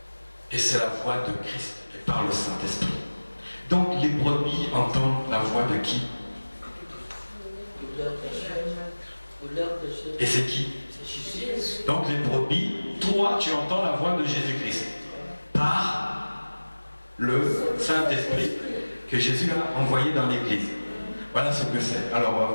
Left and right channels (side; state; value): both; inverted; correlation -1.00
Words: Et c'est la voix de Christ, et par le Saint-Esprit. Donc les brebis entendent la voix de qui? Et c'est qui? Donc les brebis, toi tu entends la voix de Jésus-Christ. par le Saint-Esprit que Jésus a envoyé dans l'Église. Voilà ce que c'est. Alors on va